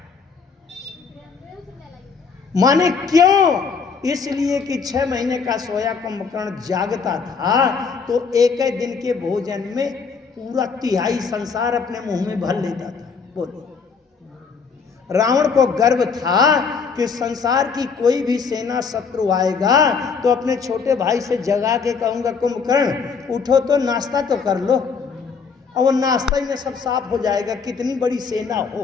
माने क्यों? इसलिए कि 6 महीने का सोया कुंभकर्ण जागता था तो एक ही दिन के भोजन में पूरा 1/3 संसार अपने मुंह में भर लेता था। बोलो, रावण को गर्व था कि संसार की कोई भी सेना शत्रु आएगा तो अपने छोटे भाई से जगा के कहूंगा, कुंभकर्ण उठो तो नाश्ता तो कर लो, और वो नाश्ता ही में सब साफ हो जाएगा, कितनी बड़ी सेना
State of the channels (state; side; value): quieter; right; 5.5 dB